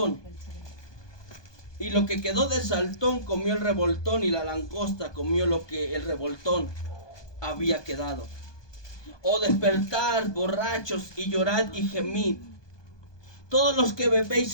y lo que quedó del saltón comió el revoltón, y la langosta comió lo que el revoltón había quedado. Oh, despertad, borrachos, y llorad y gemid, todos los que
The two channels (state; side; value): late; right; 1.2 ms